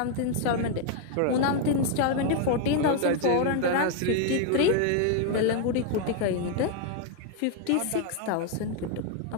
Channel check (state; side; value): different; both; correlation 0.00